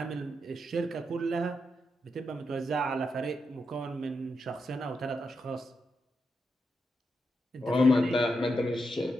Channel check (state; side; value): normal; both; correlation 0.85